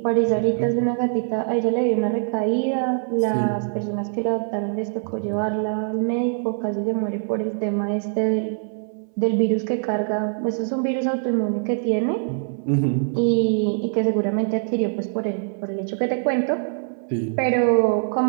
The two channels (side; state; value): left; silent; 62 dB below the other